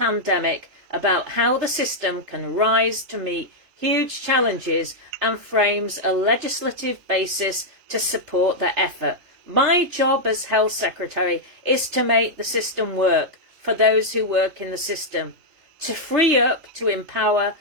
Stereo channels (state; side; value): late; left; 3.3 ms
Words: about how the system can rise to meet huge challenges and frames a legislative basis to support the effort. My job as Health Secretary is to make the system work for those who work in the system, to free up, to empower,